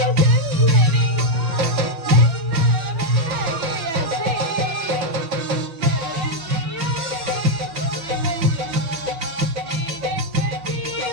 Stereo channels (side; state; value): left; late; 5.9 ms